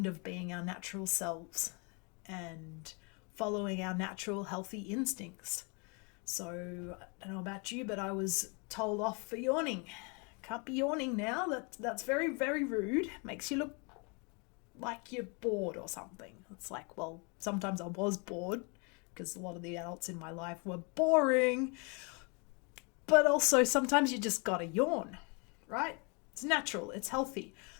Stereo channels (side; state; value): right; quieter; 33.0 dB